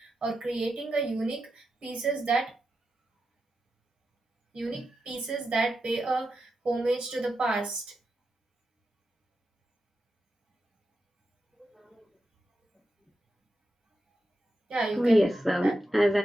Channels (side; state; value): both; normal; correlation 0.89